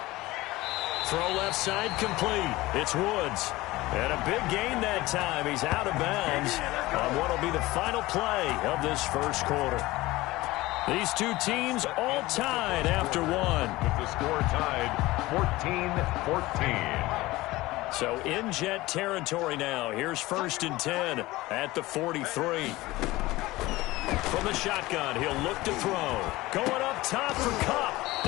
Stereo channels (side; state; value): right; quieter; 19.1 dB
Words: Throw left side complete. It's Woods. And a big gain that time. He's out of bounds on what will be the final play of this first quarter. These two teams all tied after one. With the score tied 14-14. So in Jet territory now. Here's 1st and 10 at the 43. From the shotgun, he'll look to throw. Going up top for Kupp.